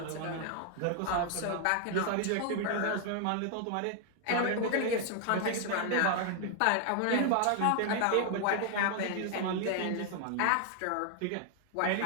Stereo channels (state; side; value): different; both; correlation 0.00